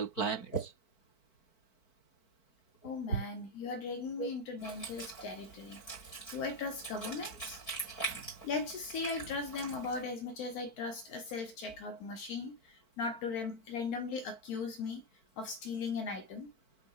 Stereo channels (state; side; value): late; right; 4.5 ms